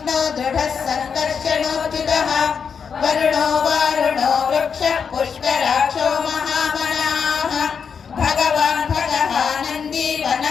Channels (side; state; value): right; quieter; 6.4 dB